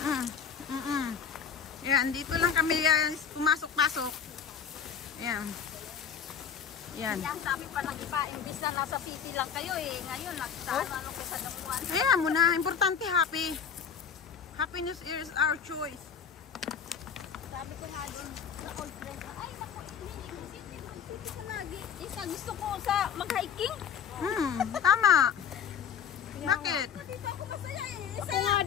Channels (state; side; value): quieter; right; 7.5 dB